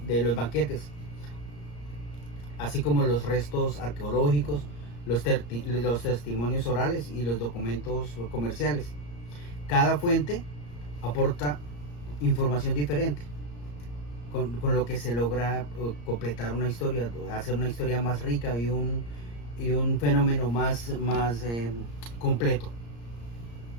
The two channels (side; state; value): right; late; 34 ms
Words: de los banquetes, así como los restos arqueológicos, los testimonios orales y los documentos comerciales. Cada fuente aporta información diferente, con lo que se logra completar una historia, hacer una historia más rica y un fenómeno más completo.